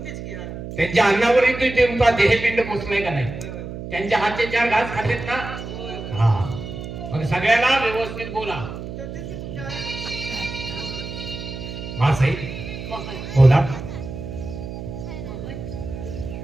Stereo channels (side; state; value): right; noise; hum, 9 dB below the sound